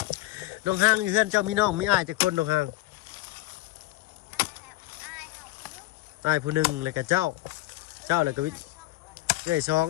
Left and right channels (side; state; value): right; quieter; 18.4 dB